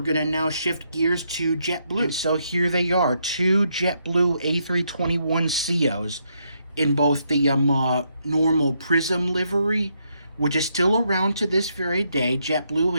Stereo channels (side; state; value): both; inverted; correlation -0.77